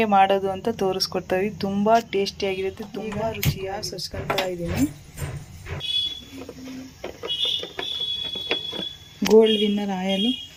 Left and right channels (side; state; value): both; identical; correlation 1.00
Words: ಮಾಡೋದು ಅಂತ ತೋರಿಸ್ಕೊಡ್ತೀವಿ. ತುಂಬ ಟೇಸ್ಟಿಯಾಗಿರುತ್ತೆ, ತುಂಬ ರುಚಿಯಾಗಿ ಸಚ್ಕೊಳ್ತಾ ಇದ್ದೀನಿ. ಗೋಲ್ಡ್ ವಿನ್ನರ್ ಆಯಲು